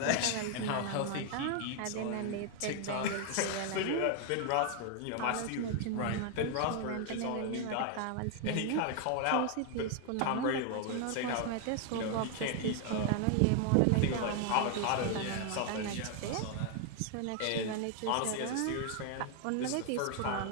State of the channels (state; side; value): different; both; correlation 0.00